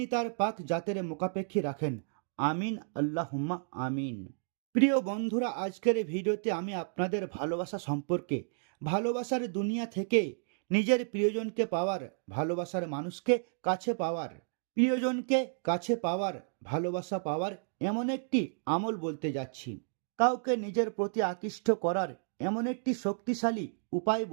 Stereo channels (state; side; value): silent; left; digital silence